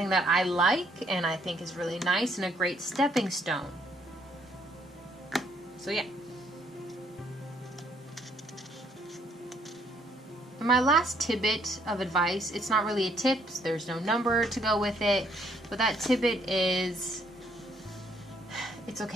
that I like and I think is really nice and a great stepping stone. So yeah. And my last tidbit of advice, it's not really a tip, there's no number to go with it, but that tidbit is, it's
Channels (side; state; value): both; normal; correlation 0.68